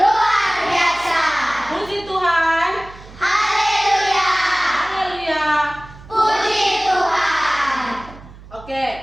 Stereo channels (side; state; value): right; noise; hum, 19 dB below the sound